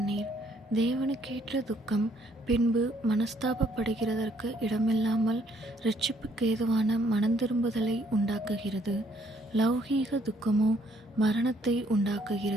தேவனுக்கேற்ற துக்கம், பின்பு மனஸ்தாபப்படுகிறதற்கு இடமில்லாமல் இரட்சிப்புக்கேதுவான மனந்திரும்புதலை உண்டாக்குகிறது. லௌகீக துக்கமோ மரணத்தை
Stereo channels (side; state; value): both; normal; correlation 0.66